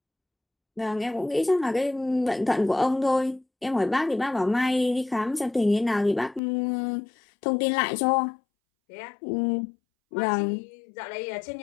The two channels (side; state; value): right; drops out; at 6.4 s